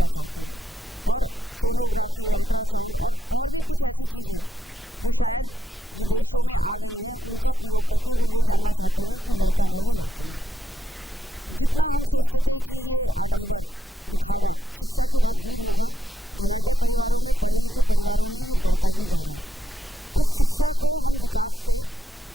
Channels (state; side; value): normal; both; correlation 0.81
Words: चाहते हैं, और सोनोग्राफी, अल्ट्रासाउंड और भी कुछ ऐसी चीज़ें जो शायद विदेशों में आ गई हैं, उनका प्रयोग करके वो ये जानना चाहते हैं कि लड़का है या लड़की है। जितना हम सोचते थे कि ये आडंबर, दिखावा शिक्षा के बाद दूर होगा, धनाढ्य परिवारों में, पढ़े लिखे परिवारों में ये बढ़ता ही जा रहा है। तो शिक्षा को हम विकास से